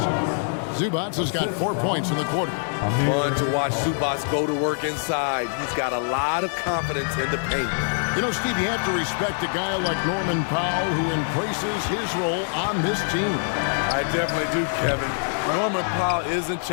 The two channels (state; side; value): silent; right; digital silence